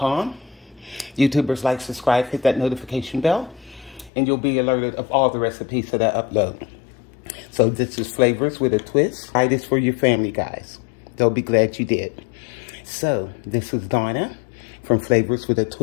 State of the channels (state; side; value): drops out; right; at 4.1 s